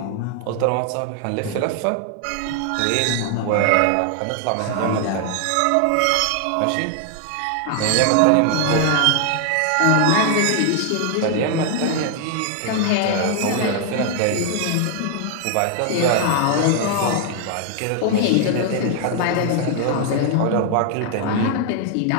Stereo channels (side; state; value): both; different; correlation 0.00